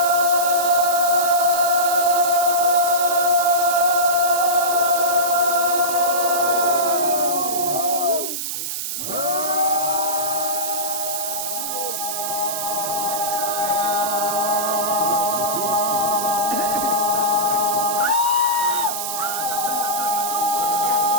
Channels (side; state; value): right; noise; hiss, 4 dB below the sound